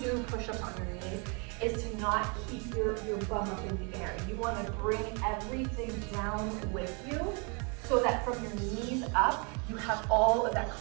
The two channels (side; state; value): left; quieter; 34.3 dB